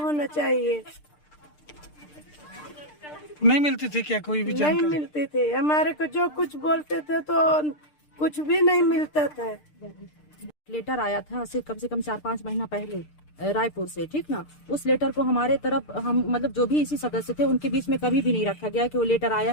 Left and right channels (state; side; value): late; right; 6.7 ms